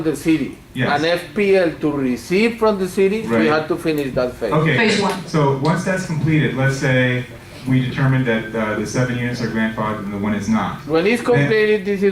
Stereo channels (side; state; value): both; identical; correlation 1.00